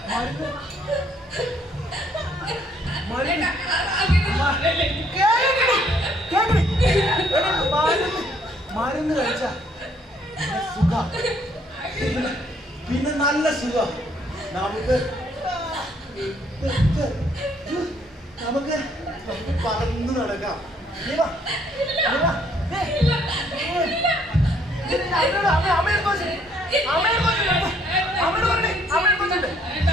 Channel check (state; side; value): normal; both; correlation 0.66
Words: മരുന്ന് മരുന്ന് മരുന്ന് കഴിച്ച സുഖ, പിന്നെ നല്ല സുഖ. നമുക്ക് നമുക്ക് നമുക്ക് പറന്ന് നടക്കാം.